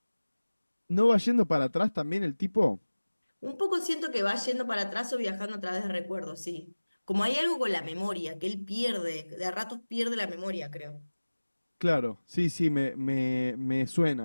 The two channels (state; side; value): inverted; both; correlation -1.00